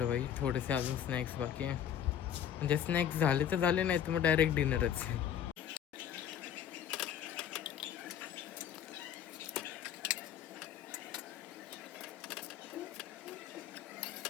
बाई थोडेसे अजून स्नॅक्स बाकी आहे. म्हणजे स्नॅक्स झाले तर झाले, नाही तर मग डायरेक्ट डिनरच.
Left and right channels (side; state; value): right; quieter; 9.5 dB